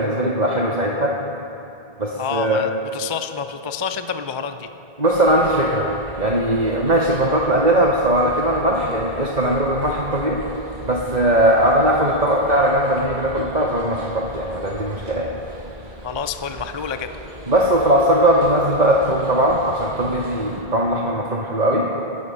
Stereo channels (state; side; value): late; left; 1.3 ms